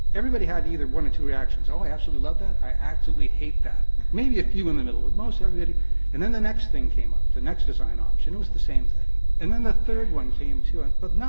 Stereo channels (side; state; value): both; inverted; correlation -1.00